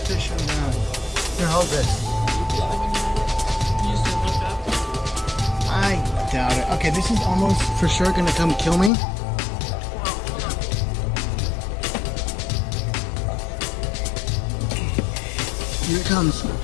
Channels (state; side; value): drops out; right; at 8.9 s